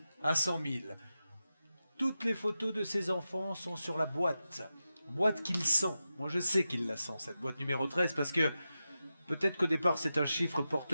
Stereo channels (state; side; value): inverted; both; correlation -0.91